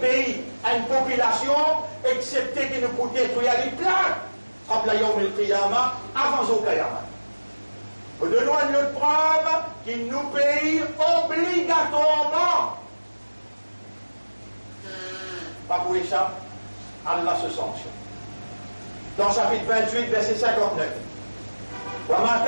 pays, une population, excepté que nous pouvons détruire les plaques, comme la Yom el-Qiyamah, avant au Qiyamah. Nous donnons une autre preuve qui nous paye obligatoirement. Pas pour échapper, Allah se sanctionne. Dans chapitre 28, verset 59. وَمَا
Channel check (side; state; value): both; inverted; correlation -1.00